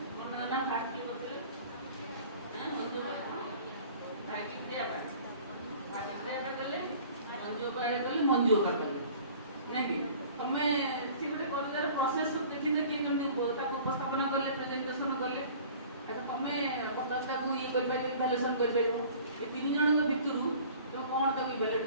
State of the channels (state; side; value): inverted; both; correlation -0.47